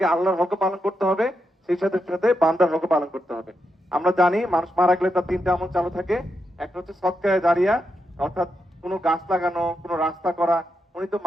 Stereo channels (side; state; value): both; normal; correlation 0.84